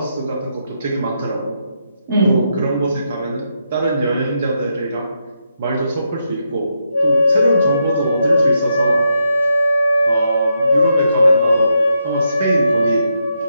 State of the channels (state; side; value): inverted; both; correlation -0.82